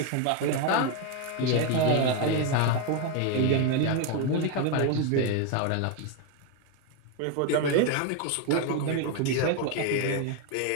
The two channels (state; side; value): different; both; correlation 0.02